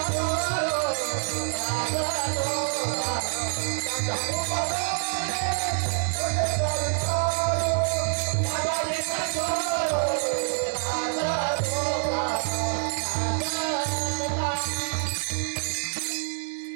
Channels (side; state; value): left; silent; 59 dB below the other